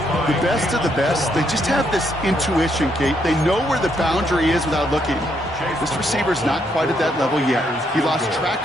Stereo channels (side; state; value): both; normal; correlation 0.75